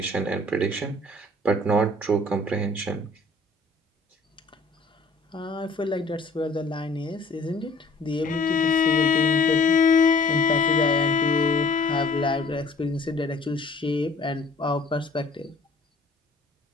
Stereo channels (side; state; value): right; quieter; 3.1 dB